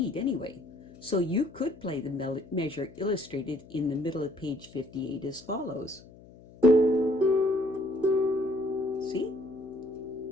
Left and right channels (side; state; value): left; noise; hum, 21 dB below the sound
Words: anyway. So you could play the measure illustrated in the middle of page 58 as follows. See?